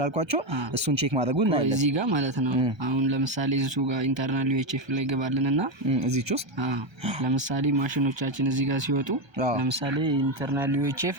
እሱን ቼክ ማድረጉን ነው እዚህ ጋር ማለት ነው። አሁን ለምሳሌ እዚሁ ጋር ኢንተርናል ዩኤችኤፍ ላይ ገባልንና እዚህች ውስጥ ለምሳሌ ማሽኖቻችን እዚህ ጋር ሲወጡ ለምሳሌ ኢንተርናል ዩኤችኤፍ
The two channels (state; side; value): late; left; 1.3 ms